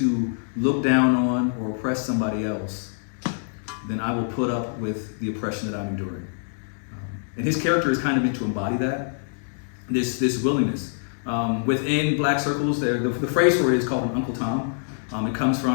look down on or oppress somebody else, then I will put up with the oppression that I'm enduring. And his character is kind of meant to embody that, this willingness. Within black circles, the phrase for it is called an Uncle Tom. It comes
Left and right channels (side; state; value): right; silent; digital silence